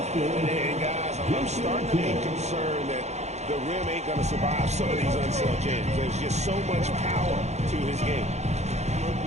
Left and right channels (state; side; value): late; left; 0.32 ms